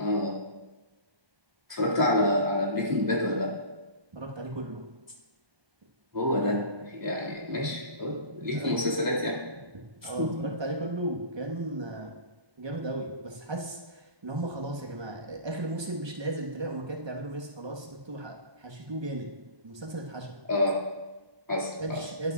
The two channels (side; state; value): left; late; 1.2 ms